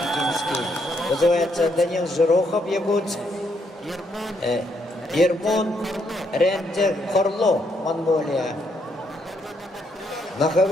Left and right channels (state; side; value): normal; both; correlation 0.74